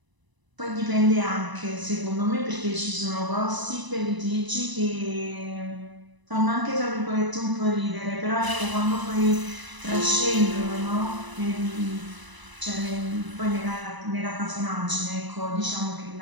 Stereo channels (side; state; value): left; late; 1.0 ms